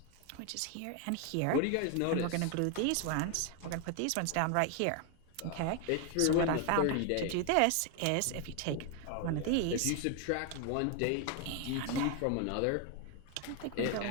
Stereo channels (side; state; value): both; different; correlation 0.01